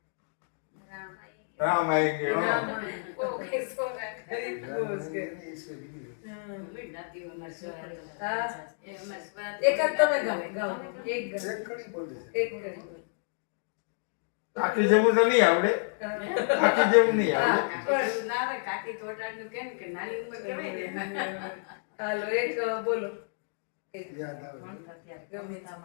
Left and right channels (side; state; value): right; silent; digital silence